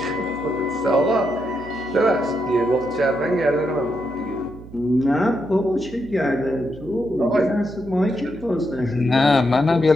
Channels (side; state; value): right; noise; hum, 17 dB below the sound